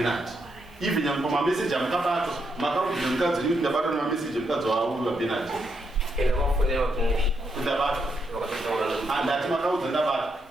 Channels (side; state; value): both; normal; correlation 0.79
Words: even nyamwe pamameseji amukabatwa makarudzira mukadzi wenyu kuti ndabatwa nemameseji emukadzi wauyu wabenard ndakafonera kuti ndabatwa handati makaudza ndabatwa